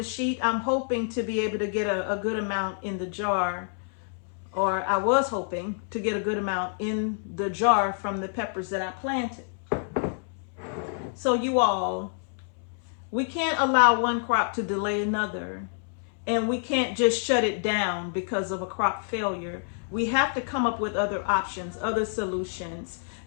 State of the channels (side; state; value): right; silent; 60 dB below the other